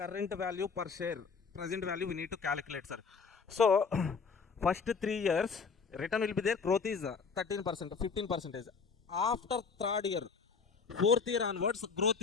value per share. Present value we need to calculate, sir. So first 3 years return will be there. Growth is 13%, 15%. After third year, fourth year onwards, growth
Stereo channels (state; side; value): quieter; right; 5.3 dB